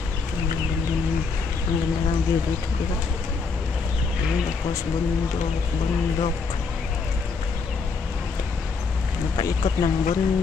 Ang ganda ng view dito, diba? Ayan, tapos bundok. Napaikot ng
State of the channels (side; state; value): right; quieter; 4.8 dB